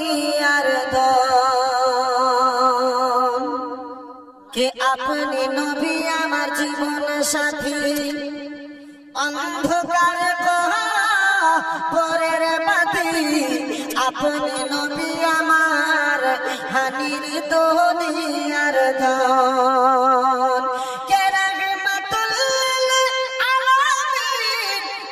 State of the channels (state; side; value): identical; both; correlation 1.00